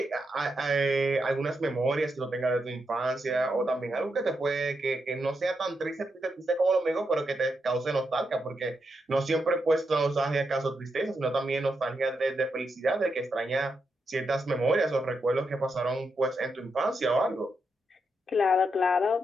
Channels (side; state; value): both; normal; correlation 0.84